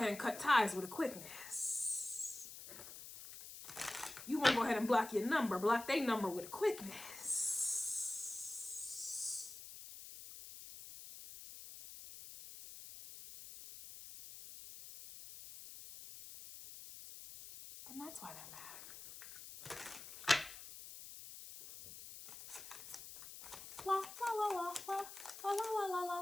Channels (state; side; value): noise; left; hiss, 13 dB below the sound